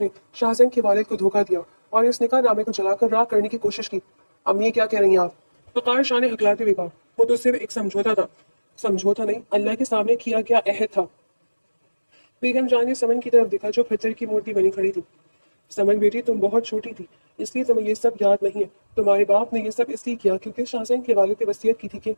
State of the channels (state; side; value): inverted; both; correlation -1.00